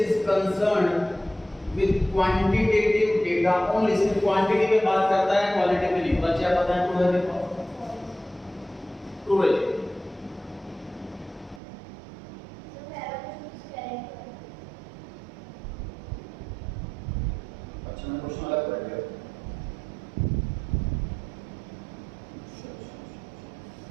concerned with quantitative data only. सिर्फ क्वांटिटी पे बात करता है, क्वालिटी पे नहीं। बच्चे आप बताएं ट्रू है देखो। ट्रू है। अच्छा मैं क्वेश्चन अलग कर दिया।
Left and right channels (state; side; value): drops out; left; at 11.6 s